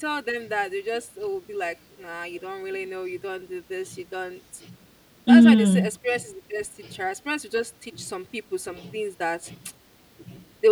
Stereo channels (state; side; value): identical; both; correlation 1.00